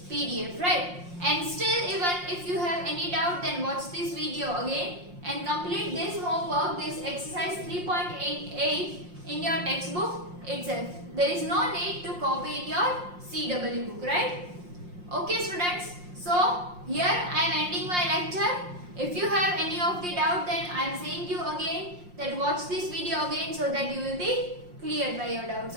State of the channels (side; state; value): left; late; 5.6 ms